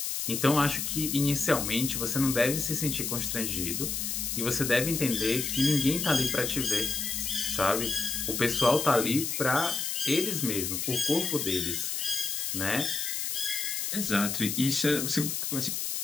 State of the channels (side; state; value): left; noise; hiss, 2 dB below the sound